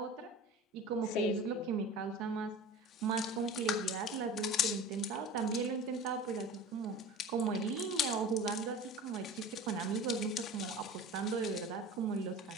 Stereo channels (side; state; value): both; normal; correlation 0.36